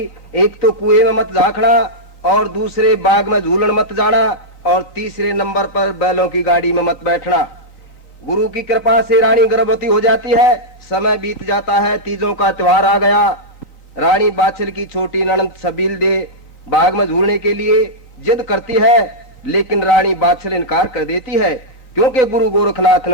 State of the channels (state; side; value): late; right; 3.9 ms